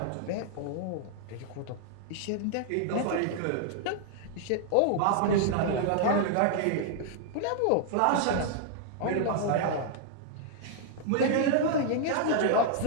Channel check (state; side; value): different; both; correlation -0.01